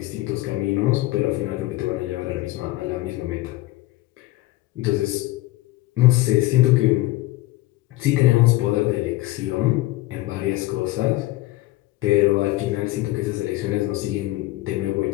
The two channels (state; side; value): quieter; right; 18.0 dB